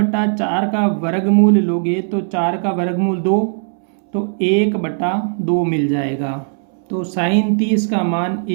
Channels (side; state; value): left; silent; 67 dB below the other